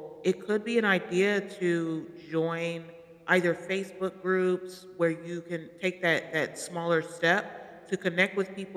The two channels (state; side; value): identical; both; correlation 1.00